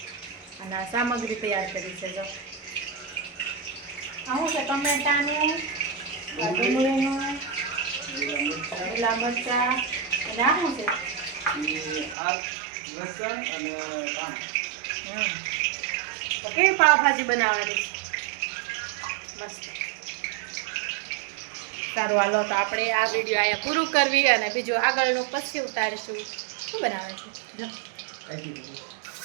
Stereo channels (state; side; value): drops out; left; at 12.2 s